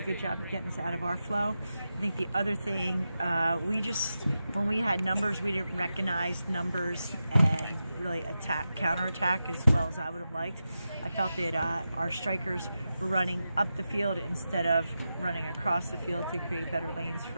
good job of getting us out of our flow. I think the other thing, when we had numbers, we didn't recognize numbers and really counterattack as well as I would have liked. I felt that our strikers were running up the field instead of running across the field to create better lanes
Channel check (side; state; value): both; inverted; correlation -0.90